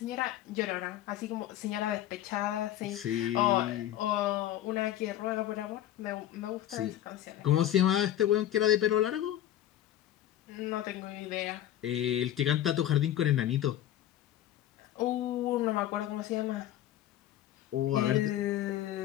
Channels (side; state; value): right; quieter; 12.4 dB